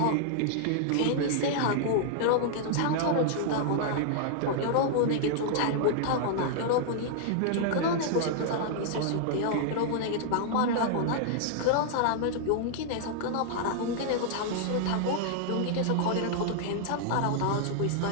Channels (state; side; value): different; both; correlation -0.01